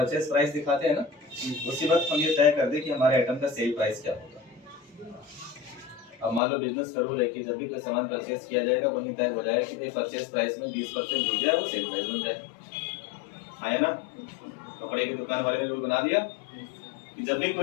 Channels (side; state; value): right; drops out; at 6.4 s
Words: प्राइस दिखाते हैं ना, उसी वक्त हम ये तय कर दें कि हमारे आइटम का सेल प्राइस क्या होगा। अब मान लो बिजनेस करो, देखिए जब भी कोई सामान परचेज किया जाएगा वही तय हो जाए कि भाई परचेज प्राइस में 20% जुड़ जाए, वो सेल प्राइस बन जाए। आया ना? कपड़े की दुकान वाले ने रूल बना दिया कि जब भी